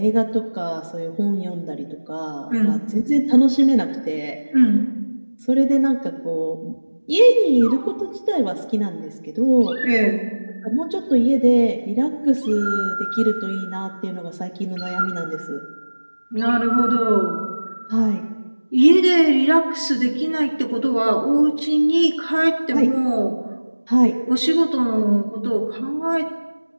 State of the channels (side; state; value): both; inverted; correlation -1.00